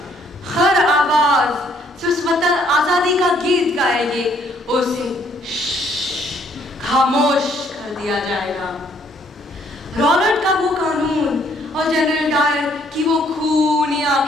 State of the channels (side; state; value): both; normal; correlation 0.66